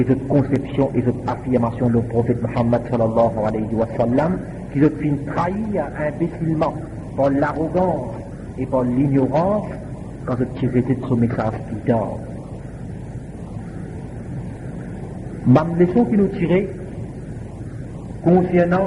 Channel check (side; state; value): both; identical; correlation 1.00